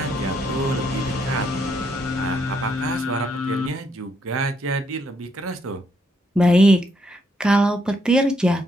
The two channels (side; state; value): both; normal; correlation 0.75